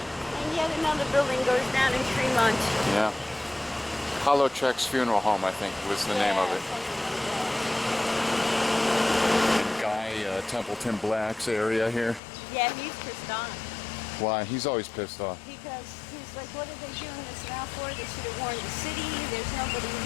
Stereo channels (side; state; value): right; drops out; at 12.2 s